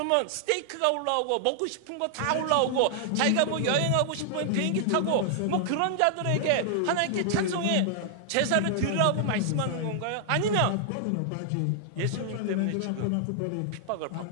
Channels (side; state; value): both; different; correlation -0.01